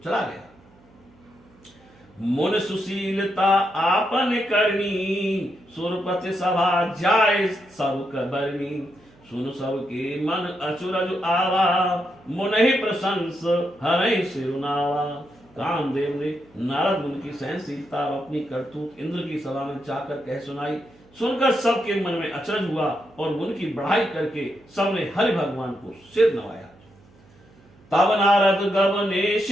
चला गया। मुन सुशीलता आपन करनी, सुरपति सभा जाय सब कबरनी। सुन सब के मन अचुरज आवा, मुनहि प्रशंस हरहि सिरुनावा। कामदेव ने नारद मुनि की सहनशीलता और अपनी करतूत इंद्र की सभा में जाकर कह सुनाई। सुनकर सबके मन में अचरज हुआ और मुनि की बढ़ाई करके सबने हरि भगवान को सिर नवाया। तब नारद गवने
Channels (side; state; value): right; noise; hum, 28 dB below the sound